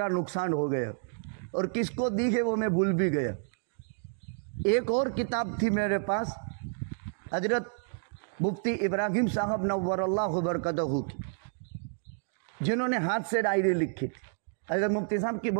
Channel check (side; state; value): left; silent; digital silence